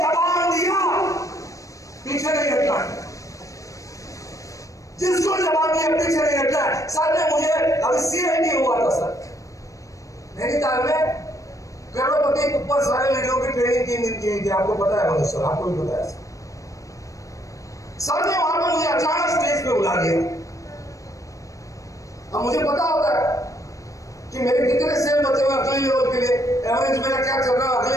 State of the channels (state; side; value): late; right; 0.16 ms